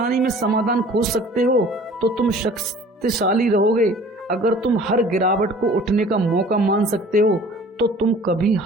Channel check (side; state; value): both; normal; correlation 0.48